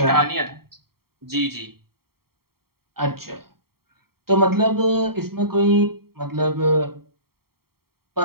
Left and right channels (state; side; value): late; left; 0.94 ms